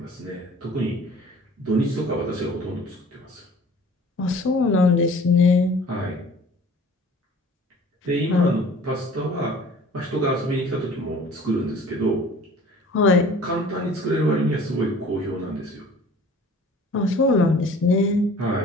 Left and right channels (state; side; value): normal; both; correlation 0.48